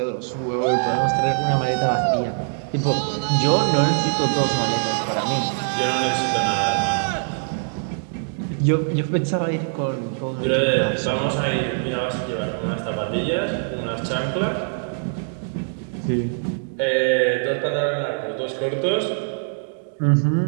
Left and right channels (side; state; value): left; silent; digital silence